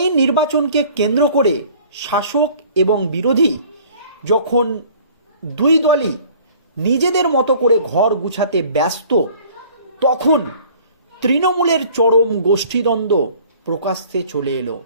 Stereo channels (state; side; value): inverted; both; correlation -0.51